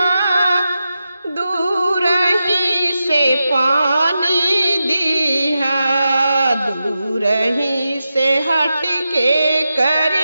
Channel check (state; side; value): inverted; both; correlation -0.90